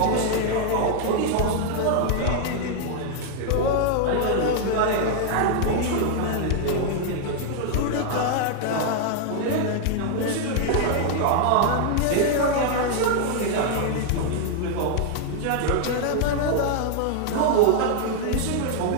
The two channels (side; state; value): both; different; correlation 0.00